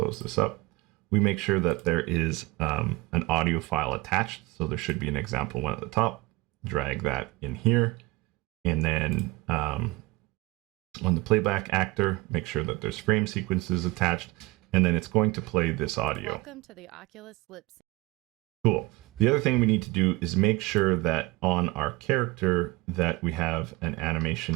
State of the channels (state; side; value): quieter; left; 20.0 dB